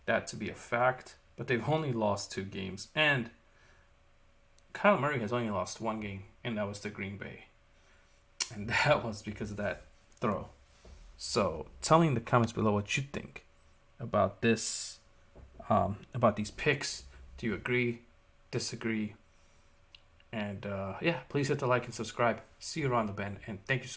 that to be a fact, but they've only lost 2 games. And Kyle Murray has only lost 1 game, and that was to Green Bay. And that was because of that throw. So tell me in the comments below what you think about this, about these picks. Do you agree? Disagree? And please hit the like and subscribe. See you around the bend, and thank you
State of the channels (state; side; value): identical; both; correlation 1.00